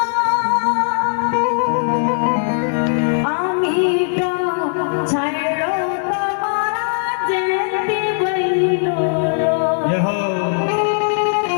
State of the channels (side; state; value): right; silent; digital silence